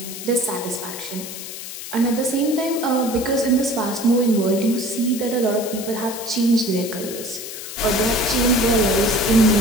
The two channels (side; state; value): left; noise; hiss, 10 dB below the sound